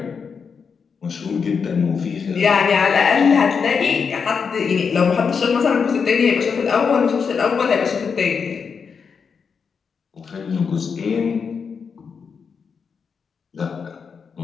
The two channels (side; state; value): right; quieter; 5.9 dB